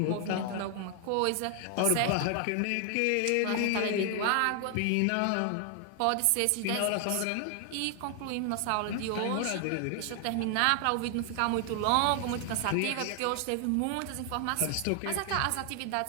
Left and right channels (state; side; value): different; both; correlation 0.00